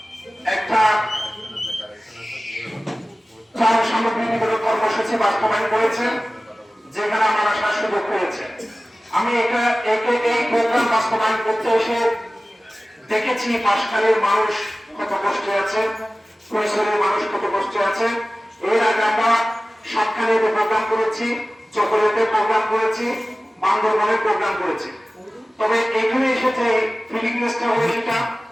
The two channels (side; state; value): both; normal; correlation 0.96